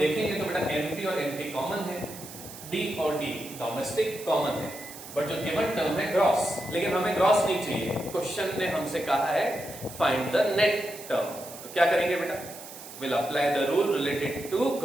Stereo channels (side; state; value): right; noise; hiss, 14 dB below the sound